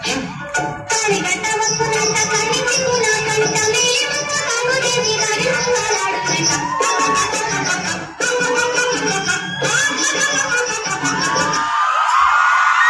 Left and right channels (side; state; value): both; identical; correlation 1.00